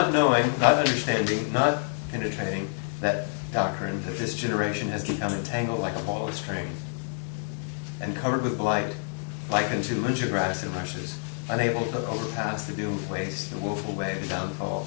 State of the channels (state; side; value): silent; right; 60 dB below the other